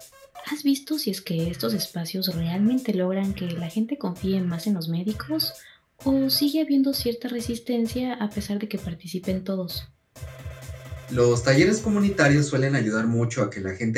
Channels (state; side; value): identical; both; correlation 1.00